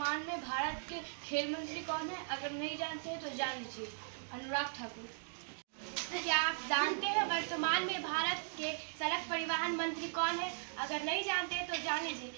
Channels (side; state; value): left; silent; digital silence